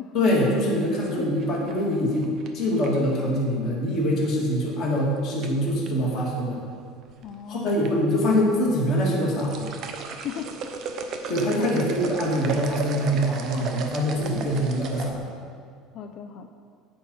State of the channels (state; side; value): normal; both; correlation 0.39